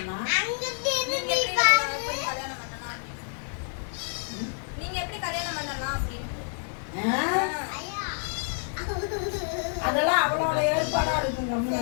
நீங்க எப்படி கல்யாணம் பண்ணலாம் அப்படின்னு. அதெல்லாம் அவளோட ஏற்பாடா இருக்குங்க.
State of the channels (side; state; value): right; silent; digital silence